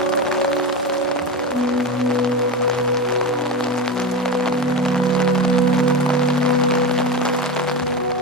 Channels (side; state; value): both; normal; correlation 0.22